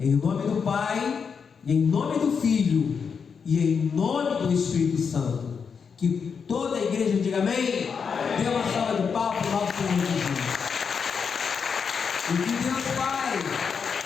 nome do Pai, e em nome do Filho, e em nome do Espírito Santo. Que toda a igreja diga amém. Dê uma salva de palmas para o nosso Senhor Jesus. E que Deus Pai,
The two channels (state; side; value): quieter; right; 6.1 dB